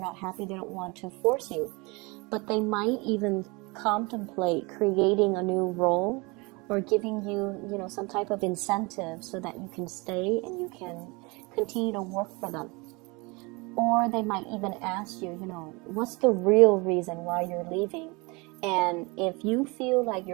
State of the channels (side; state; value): left; quieter; 27.0 dB